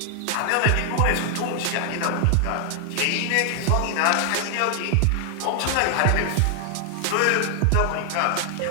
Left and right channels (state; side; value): different; both; correlation 0.00